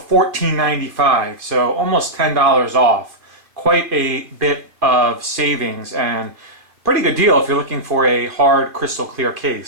so almost $10 off. Quite a bit of savings and pretty good deal if you're looking for a hard crystal clear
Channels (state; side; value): late; left; 2.4 ms